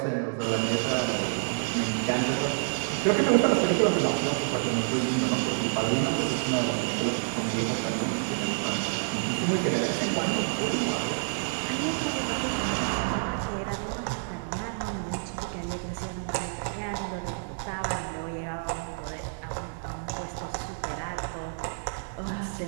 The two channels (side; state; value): left; silent; digital silence